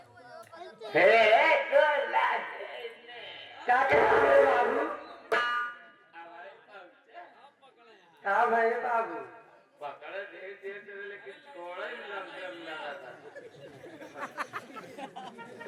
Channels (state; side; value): identical; both; correlation 1.00